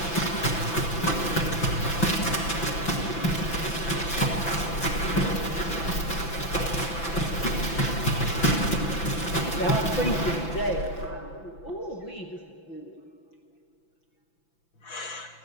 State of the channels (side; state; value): right; late; 5.9 ms